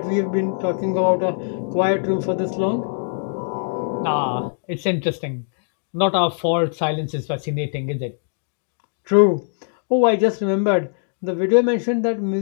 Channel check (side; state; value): right; silent; digital silence